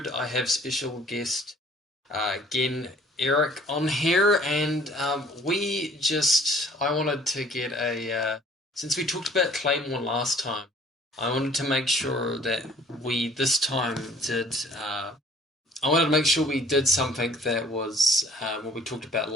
I have special guest, again, Eric on here, and I wanted to get since we talked about Claymore last time, I wanted to make sure that we this time did, I wanted to make sure we did something that was what we talked about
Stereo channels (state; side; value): normal; both; correlation 0.55